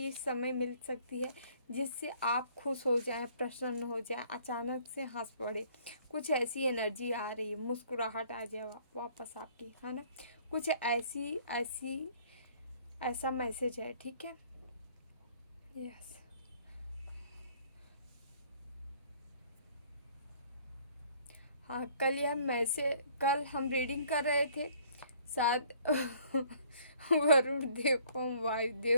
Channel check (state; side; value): inverted; both; correlation -0.58